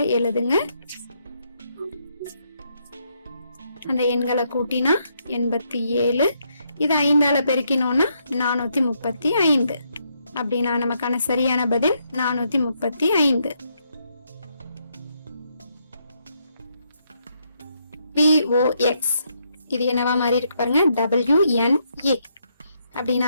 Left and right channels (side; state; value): both; inverted; correlation -0.76